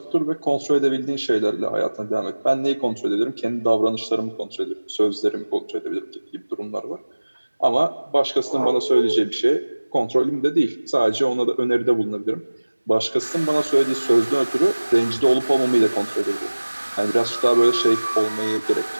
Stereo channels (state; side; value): inverted; both; correlation -1.00